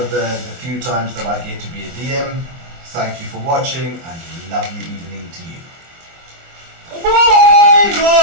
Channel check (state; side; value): late; left; 24 ms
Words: the few times that I get to be a DM. Thank you for watching, and a lovely evening to you. Bye!